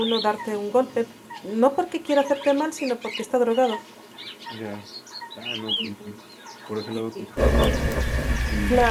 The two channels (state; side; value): identical; both; correlation 1.00